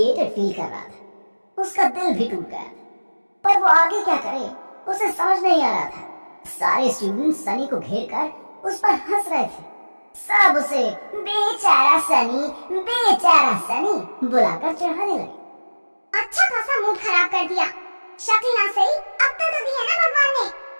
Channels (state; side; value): inverted; both; correlation -1.00